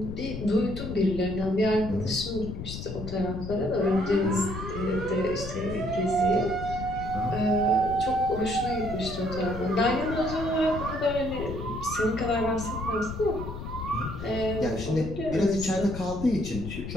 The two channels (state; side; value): noise; left; rumble, 8 dB below the sound